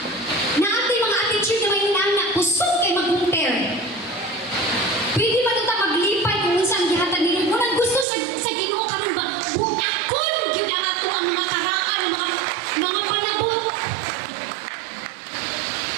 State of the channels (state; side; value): drops out; left; at 8.1 s